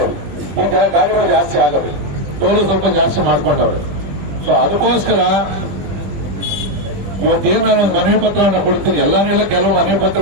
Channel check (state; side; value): late; left; 20 ms